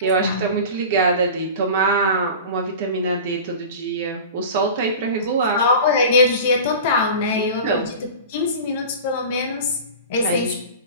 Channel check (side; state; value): both; inverted; correlation -0.34